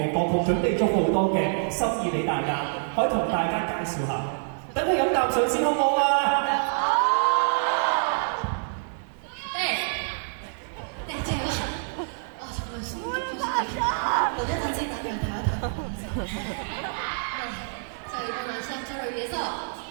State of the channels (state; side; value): silent; left; digital silence